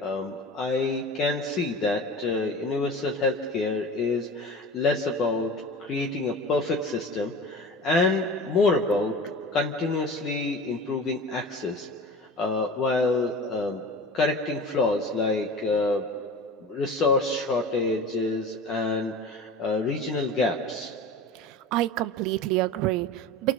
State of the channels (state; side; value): normal; both; correlation 0.35